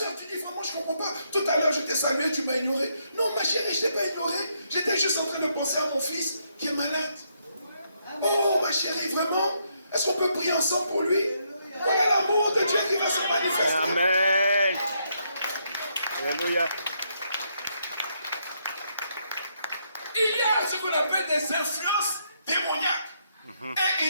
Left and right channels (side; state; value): both; inverted; correlation -0.75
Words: tu dis vraiment je ne comprends pas. Tout à l'heure je t'ai salué, tu m'as ignoré. Non ma chérie, je ne t'ai pas ignoré. J'étais juste en train de penser à mon fils qui est malade. Oh ma chérie, vraiment? Est-ce qu'on peut prier ensemble pour lui? Voilà l'amour de Dieu qui va se manifester. Amen. Alléluia. Il y a ce qu'on appelle des influences démoniaques. Et